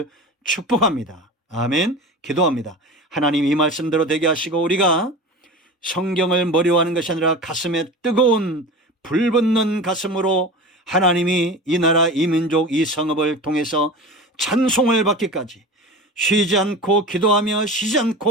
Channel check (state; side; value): normal; both; correlation 0.32